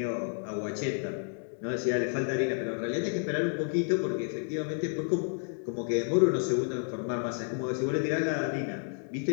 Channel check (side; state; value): right; silent; 57 dB below the other